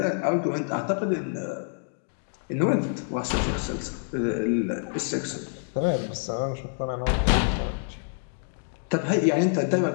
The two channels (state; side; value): silent; right; digital silence